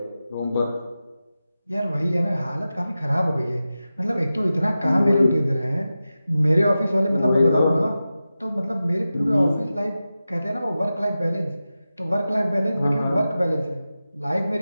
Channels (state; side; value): inverted; both; correlation -0.93